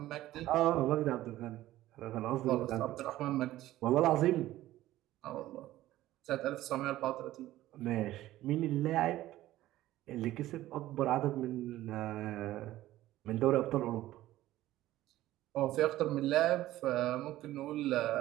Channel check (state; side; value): quieter; left; 15.1 dB